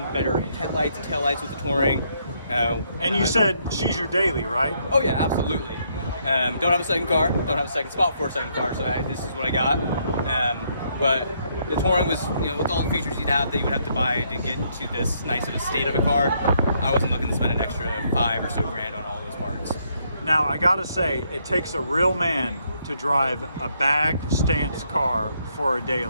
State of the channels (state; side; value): inverted; both; correlation -0.72